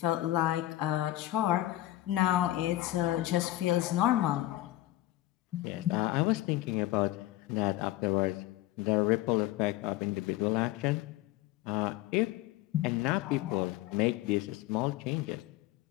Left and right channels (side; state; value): right; quieter; 15.7 dB